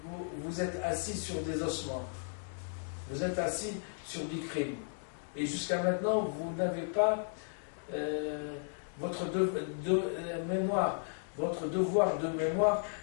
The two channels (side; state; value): right; silent; digital silence